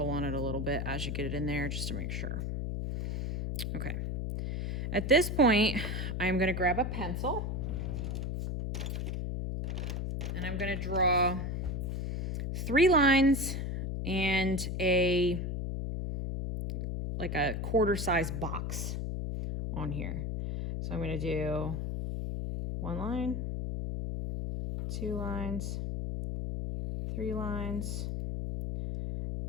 on it a little bit as you get it in there just to make sure. Okay. At this point, I'm going to grab a pencil and I'm going to draw 3 lines and like a quarter-size box on here. So I'm going to do 1 line, 2 lines, 3 lines,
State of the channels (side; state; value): left; noise; hum, 2 dB below the sound